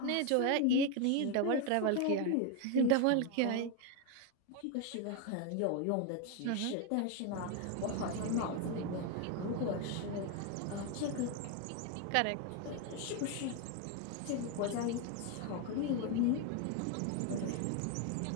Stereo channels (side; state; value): both; different; correlation 0.01